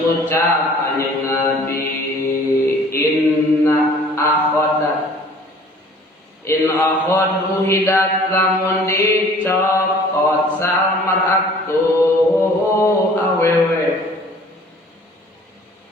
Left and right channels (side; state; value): both; normal; correlation 0.51